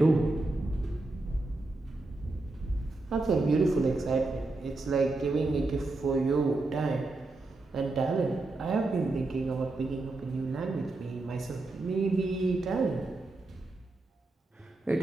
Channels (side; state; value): left; quieter; 3.1 dB